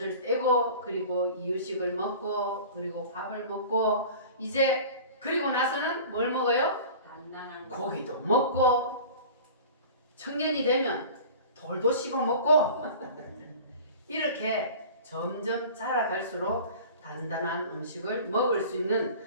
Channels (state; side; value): inverted; both; correlation -0.40